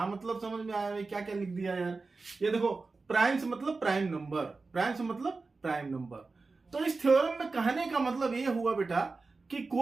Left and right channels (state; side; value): quieter; left; 3.9 dB